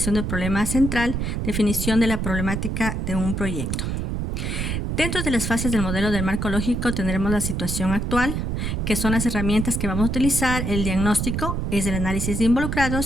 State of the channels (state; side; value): noise; right; rumble, 1 dB below the sound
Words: del problema central, definición de la problemática de un proyecto. Dentro de las fases del modelo del marco lógico tendremos la situación actual, que son las herramientas que vamos a utilizar. El diagnóstico es el análisis de